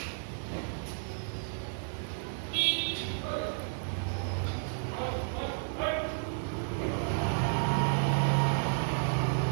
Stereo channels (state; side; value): silent; left; digital silence